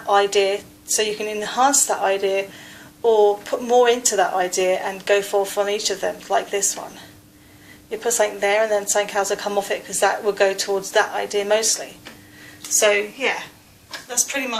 idea, so you can enhance that idea or put more into that idea and go forth on each of them, like this one. You put something there and then something else will come off it, because that will go towards that idea mostly. So yeah, that's pretty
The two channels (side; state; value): both; identical; correlation 1.00